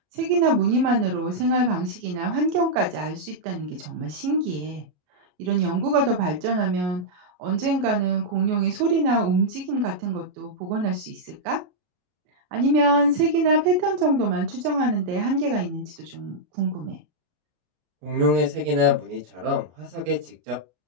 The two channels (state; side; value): late; left; 33 ms